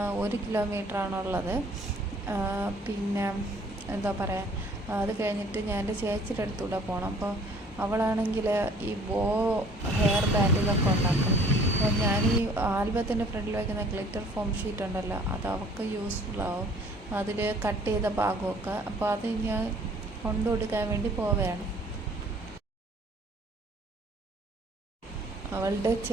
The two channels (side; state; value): both; normal; correlation 0.55